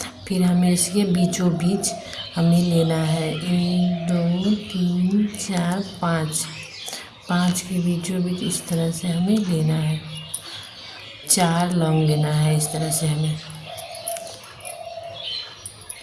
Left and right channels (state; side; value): identical; both; correlation 1.00